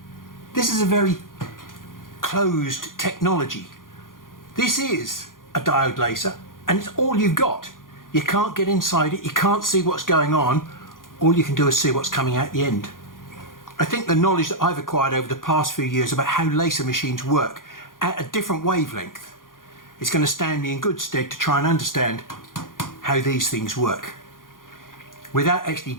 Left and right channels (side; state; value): right; late; 0.90 ms